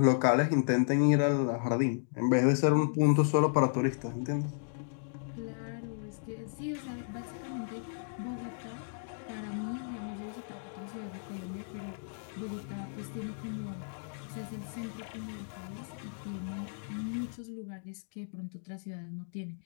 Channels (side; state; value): right; silent; digital silence